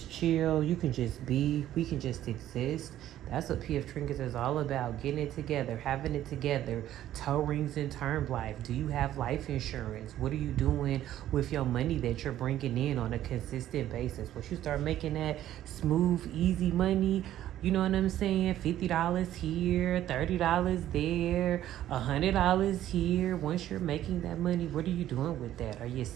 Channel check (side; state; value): left; quieter; 12.6 dB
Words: chill. You can just be. We can just exist. That's what P.F.Trinkets is all about. Getting it together, having it together. Toe rings and term life. Do you have life insurance? What are you doing with your money that you're bringing in on a consistent basis? Once you start making that smooth, easy money, you know what I'm saying? $50 here, $30 there, $100 here. Once you're making that money, what are you doing with that? Are you